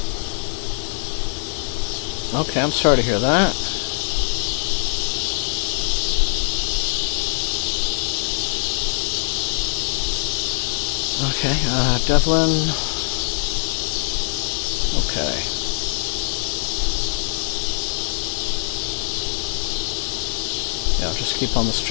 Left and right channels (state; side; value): silent; right; digital silence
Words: Okay, I'm sorry to hear that. Okay, Devlin. Okay. Yeah, just keep on the